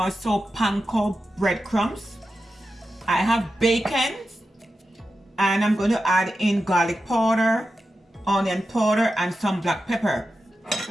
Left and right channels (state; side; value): normal; both; correlation 0.91